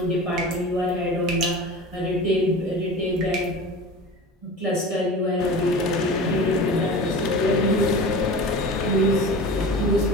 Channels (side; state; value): both; normal; correlation 0.34